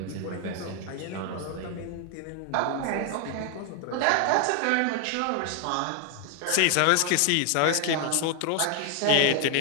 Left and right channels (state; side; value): different; both; correlation 0.00